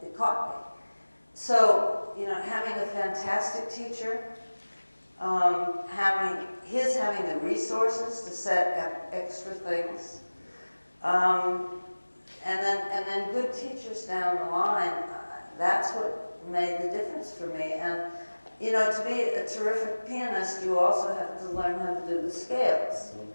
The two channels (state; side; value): inverted; both; correlation -1.00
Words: it caught me. So, having a fantastic teacher, having the resources to set up extra things, and then good teachers down the line, that's what made the difference for me. And to be a terrific pianist, you also have to learn how to do the scales.